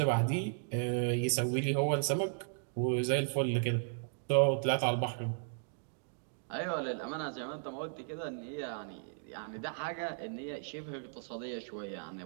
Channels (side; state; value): left; silent; digital silence